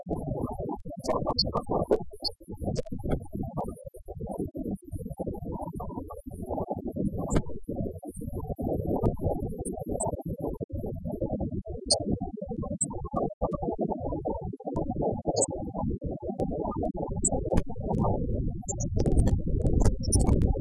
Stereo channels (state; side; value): identical; both; correlation 1.00